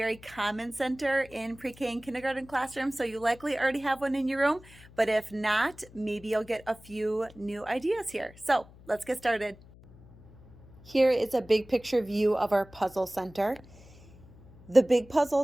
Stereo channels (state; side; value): noise; left; hum, 22 dB below the sound